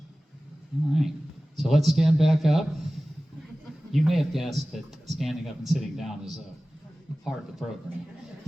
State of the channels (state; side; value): normal; both; correlation 0.97